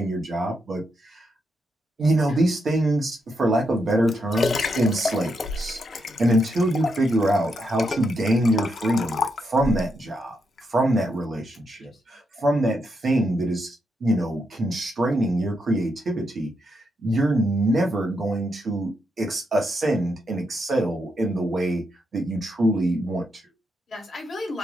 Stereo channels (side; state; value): both; normal; correlation 0.81